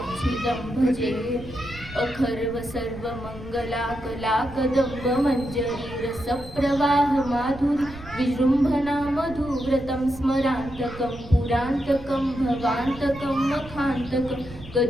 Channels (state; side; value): noise; right; rumble, 15 dB below the sound